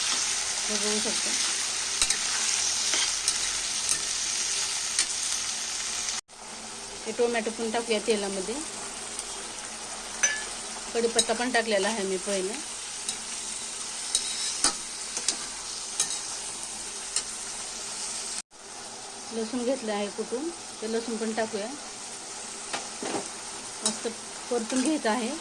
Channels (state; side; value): identical; both; correlation 1.00